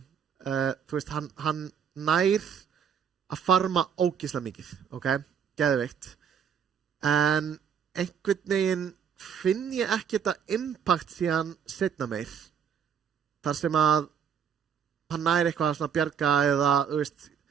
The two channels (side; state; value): left; quieter; 7.6 dB